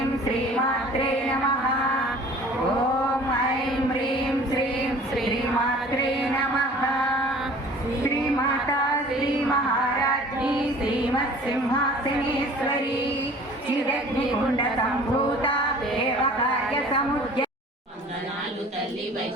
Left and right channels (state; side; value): normal; both; correlation 0.47